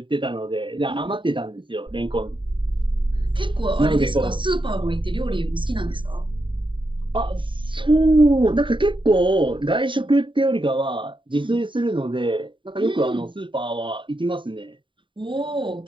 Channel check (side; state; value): left; late; 0.24 ms